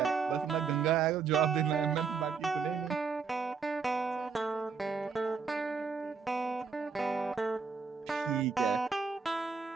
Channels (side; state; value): left; quieter; 5.4 dB